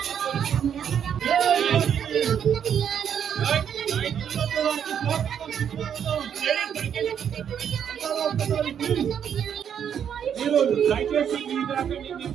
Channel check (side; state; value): left; quieter; 8.5 dB